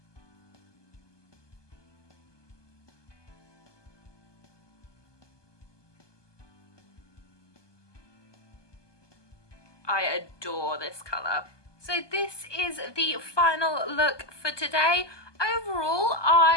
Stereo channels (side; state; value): right; late; 1.2 ms